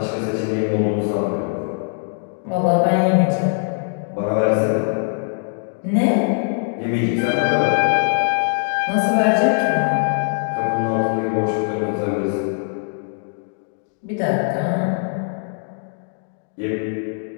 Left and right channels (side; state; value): right; silent; digital silence